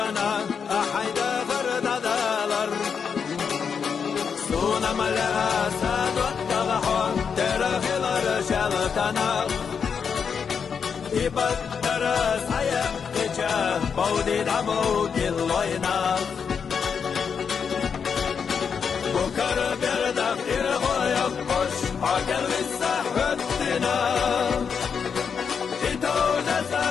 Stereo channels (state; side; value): quieter; right; 6.5 dB